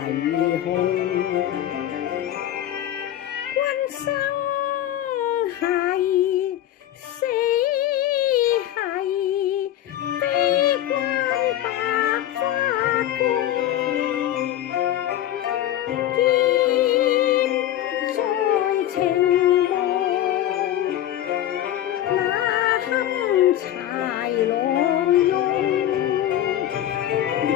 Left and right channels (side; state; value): right; quieter; 12.3 dB